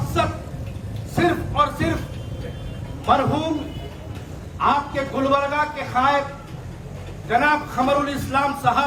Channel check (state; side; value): identical; both; correlation 1.00